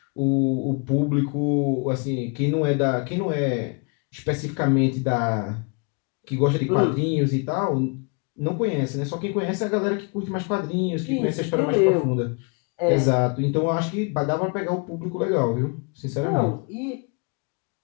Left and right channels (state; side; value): quieter; right; 34.4 dB